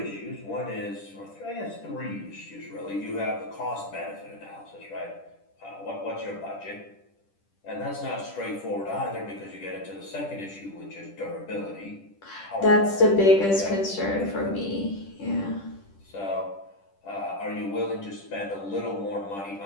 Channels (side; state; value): right; late; 10 ms